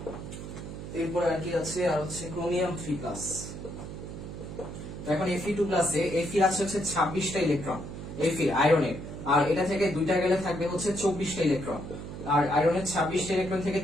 এরপর আর কি আছে, আর হচ্ছে ক্রোমিয়াম 3+। তো এখন Fe2+ এ Fe আছে হচ্ছে 26টা ইলেকট্রন, Fe আয়রনের, আর এটা থেকে দুইটা গেলে থাকবে হচ্ছে 24টা ইলেকট্রন, আর আয়রনের 26টা ইলেকট্রন থেকে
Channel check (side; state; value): right; noise; hum, 9 dB below the sound